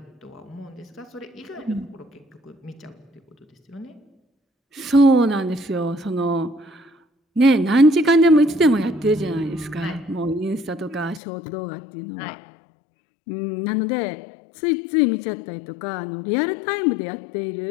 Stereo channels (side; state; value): right; drops out; at 11.2 s